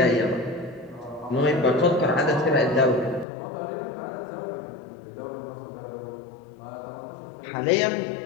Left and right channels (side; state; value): right; drops out; at 3.2 s